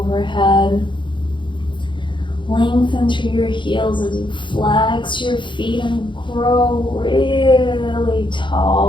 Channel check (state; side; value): late; right; 0.23 ms